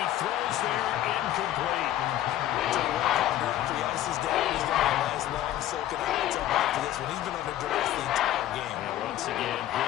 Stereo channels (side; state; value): right; quieter; 13.0 dB